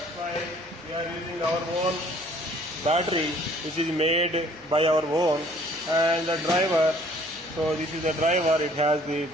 why we are using our own battery, which is made by our own. And the driver, so this is the driver, it has the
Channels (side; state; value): right; noise; hum, 27 dB below the sound